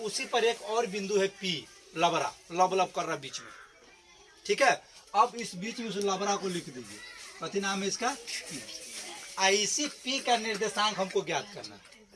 पर एक और बिंदु है पी, लबरा, लब कर रहा बीच में। ठीक है। अब इस बीच में उस लबरा को लिख दीजिए, कथी नाम है इसका, इसी पी का निर्देशांक हमको ज्ञात करना है।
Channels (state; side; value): identical; both; correlation 1.00